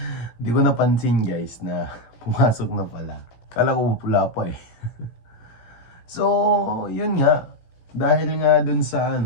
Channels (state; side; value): late; right; 16 ms